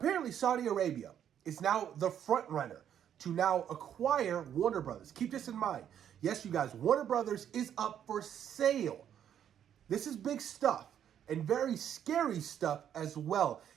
Saudi Arabia is now the front runner to now acquire Warner Brothers. Keep this in mind. Yes, you guys, Warner Brothers is up for sale. This is big stuff and very scary stuff as well.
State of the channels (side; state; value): left; quieter; 9.6 dB